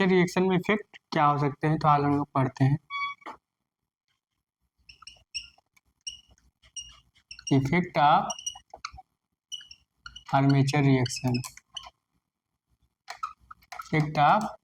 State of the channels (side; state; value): both; identical; correlation 1.00